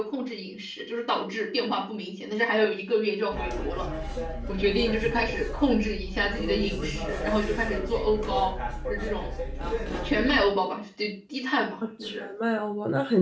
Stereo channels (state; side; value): identical; both; correlation 1.00